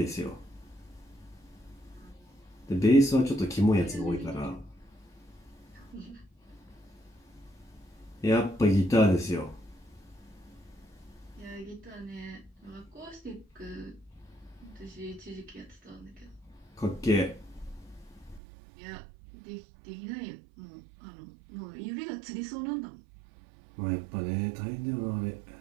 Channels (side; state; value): left; drops out; at 18.4 s